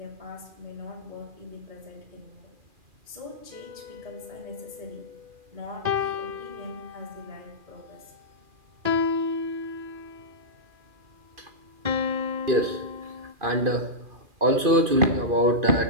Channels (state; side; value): late; left; 2.5 ms